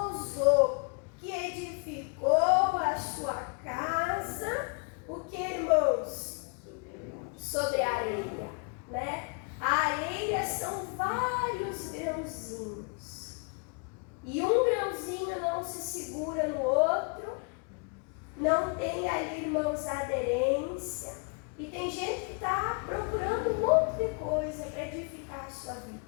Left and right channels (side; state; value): right; quieter; 36.8 dB